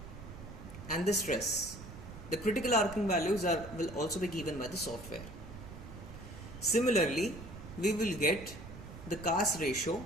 and the stress. The critical arcing values will also be given by the software. Similarly, we will get the CAS ratio,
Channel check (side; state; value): right; noise; rumble, 13 dB below the sound